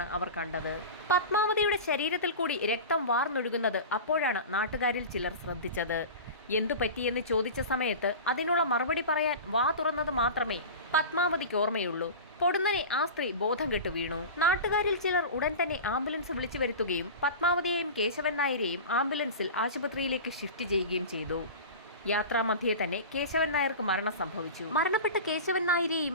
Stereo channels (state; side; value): inverted; both; correlation -0.31